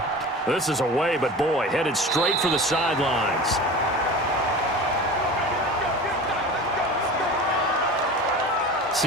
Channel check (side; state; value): both; normal; correlation 0.35